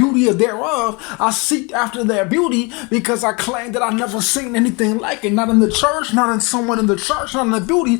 of thereof, I seek after their beauty, because I claim that I never seen anything like it. Not in the church, not in someone in the church, not in the beauty.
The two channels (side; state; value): right; quieter; 29.2 dB